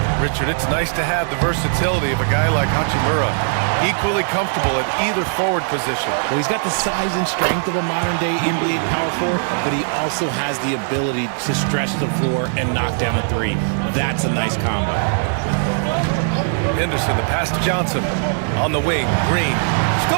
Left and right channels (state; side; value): silent; left; 65 dB below the other